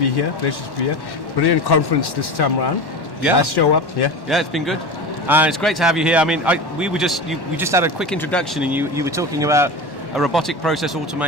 here. Pleasure to be here. Brilliant conference this time around. Yeah. Nice show up. Yeah. Yeah, it's been good. It's great to have you here. I mean, we just had a quick introduction, and you were talking about a robotic process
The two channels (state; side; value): late; right; 1.1 ms